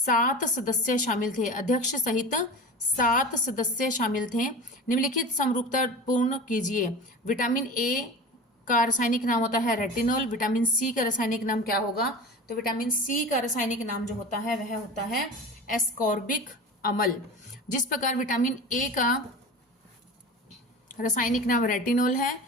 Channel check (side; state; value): both; normal; correlation 0.32